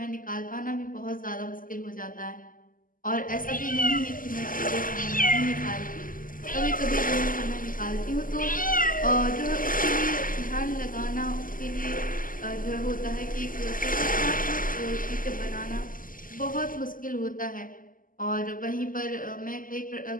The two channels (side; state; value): right; late; 0.40 ms